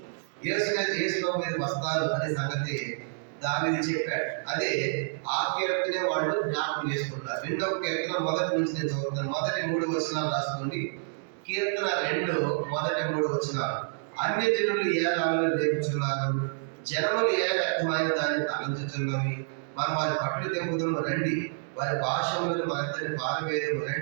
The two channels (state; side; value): silent; left; digital silence